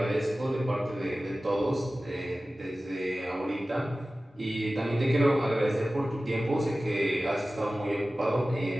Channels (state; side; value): normal; both; correlation 0.96